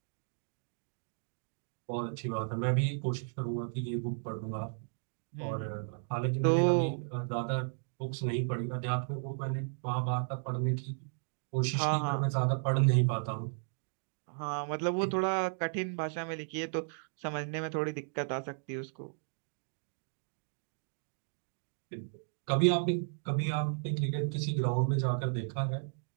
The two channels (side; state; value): left; silent; digital silence